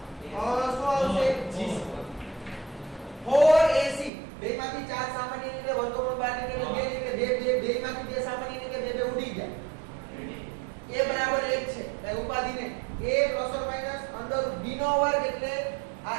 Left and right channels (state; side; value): drops out; left; at 4.1 s